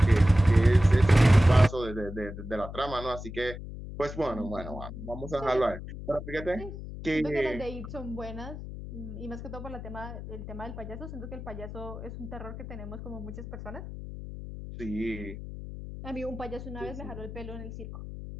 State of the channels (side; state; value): left; noise; hum, 10 dB below the sound